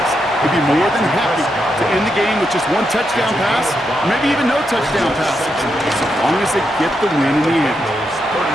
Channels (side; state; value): both; normal; correlation 0.83